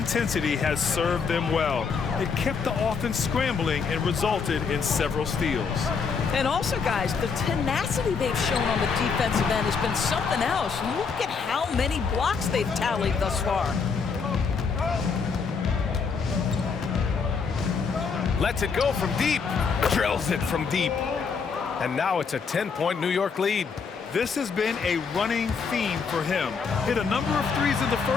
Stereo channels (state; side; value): quieter; right; 5.5 dB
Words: has served them well. It kept the offense scrambling and resulted in several steals. And also, guys, the tenacity they've shown on the defensive end has been something else. Look at how many blocks they've tallied thus far. Lets it go from deep. Drills it from deep. And now it's a 10-point New York lead. This has been a running theme for him. Hit a number of threes in the